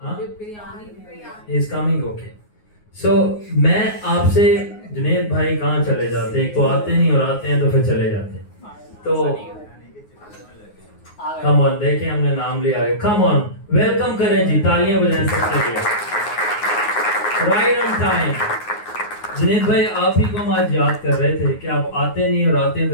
He is coming, okay. So मैं आपसे, जुनैद भाई कहाँ चले जाते हैं? एक तो आते नहीं और आते हैं तो फिर चले जाते हैं। तो कम ऑन, देखें हमने नाम लिया है, कम ऑन वेलकम करें जी, तालियां बजाएं सबके लिए। Right on time. जुनैद भाई आप ही को हम आज याद कर रहे थे कि आप आते नहीं और आते हैं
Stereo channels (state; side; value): late; right; 9.5 ms